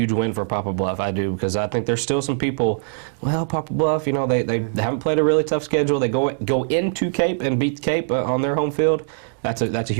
win for Poplar Bluff. I do, because I think there's still some people. Well, Poplar Bluff, they haven't played a really tough schedule. They go into Cape and beat Cape on their home field. That's a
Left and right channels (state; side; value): silent; left; digital silence